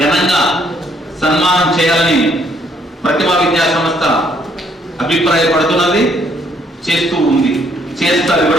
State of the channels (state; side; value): normal; both; correlation 0.68